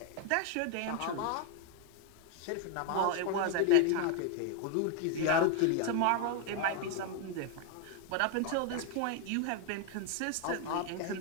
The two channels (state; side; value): different; both; correlation 0.01